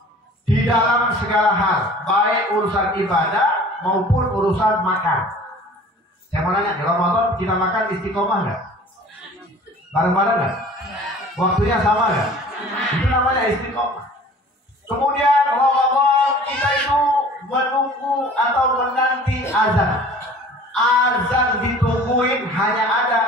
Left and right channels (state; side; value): normal; both; correlation 0.46